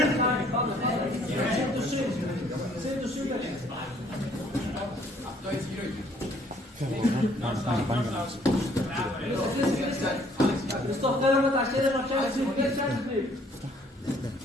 Συν του σύμπερ. Αυτό έτσι γύρω εκεί. Χριστό, θέλω με τα χέρια να πιάσεις πριν. Δεν πιάσεις πριν.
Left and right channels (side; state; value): both; normal; correlation 0.62